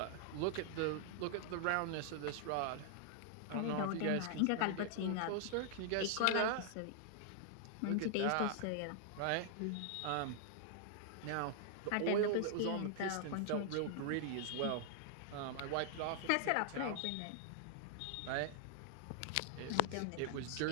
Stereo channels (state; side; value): different; both; correlation -0.01